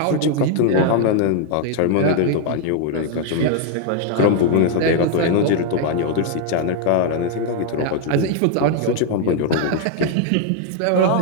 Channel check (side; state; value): both; different; correlation 0.00